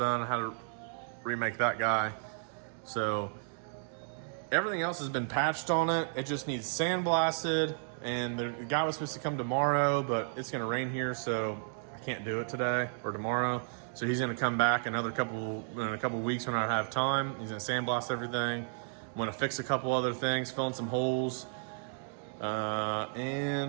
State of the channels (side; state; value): left; silent; digital silence